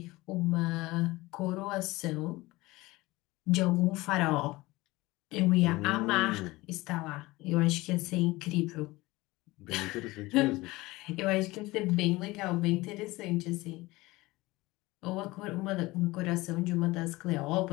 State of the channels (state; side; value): quieter; right; 20.5 dB